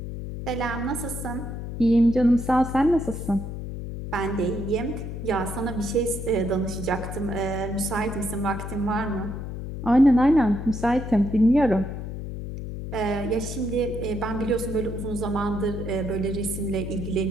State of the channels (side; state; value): left; noise; hum, 7 dB below the sound